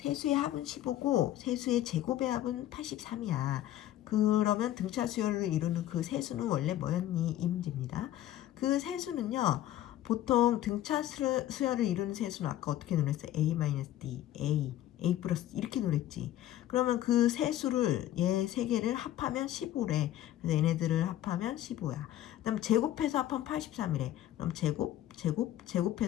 합은 15고 세수의 제곱의 합은 83이야. 그러면 등차 수열을 이루는 그 세수는 원래 뭐였니? 이 문제입니다. 그 세수는요. 보통 등차 수열을 이루는 세수는 아까 어떻게 노랬어요? A-D, A 플러스 이렇게 노랬지. 그러면 그 세수를 얘 세 개를 합하면 15래. 그래서 얘네들을 합하면 15야. 그 다음 제곱해서 합하면 83이래. 그럼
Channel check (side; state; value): right; quieter; 13.1 dB